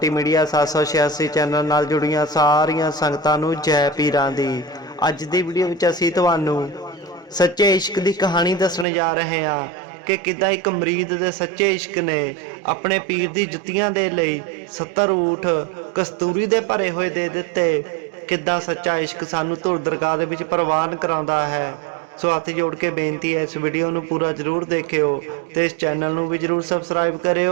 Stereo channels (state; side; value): drops out; left; at 8.8 s